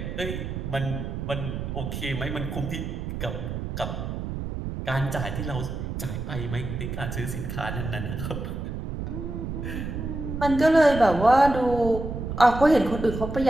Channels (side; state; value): right; noise; rumble, 5 dB below the sound